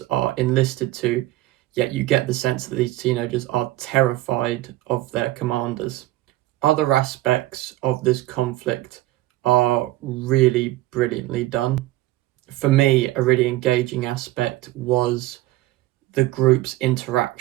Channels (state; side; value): quieter; left; 16.9 dB